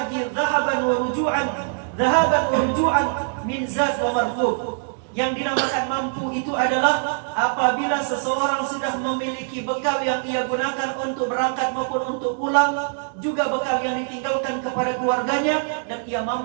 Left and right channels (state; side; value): silent; left; 63 dB below the other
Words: dhahaban wa ruju'an min zad wa markub. Yang dinamakan mampu itu adalah apabila seseorang sudah memiliki bekal yang ia gunakan untuk berangkat maupun untuk pulang, juga bekal yang ditinggalkan kepada keluarganya, dan ia